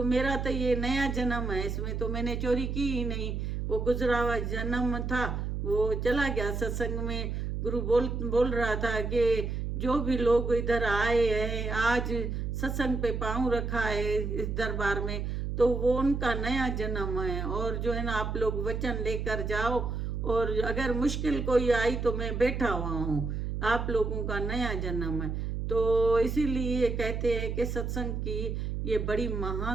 मेरा तो ये नया जन्म है, इसमें तो मैंने चोरी की ही नहीं, वो गुजरा हुआ जन्म था वो चला गया। सत्संग में गुरु बोल रहा था कि जो भी लोग इधर आए हैं आज सत्संग पे पाँव रखा है इस दरबार में, तो वो उनका नया जन्म है। और जो है ना आप लोग वचन लेकर जाओ, और अगर मुश्किल कोई आई तो मैं बैठा हुआ हूँ, आप लोगों का नया जन्म है। तो इसीलिए कहते हैं कि सत्संग की ये बड़ी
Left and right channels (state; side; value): noise; right; hum, 3 dB below the sound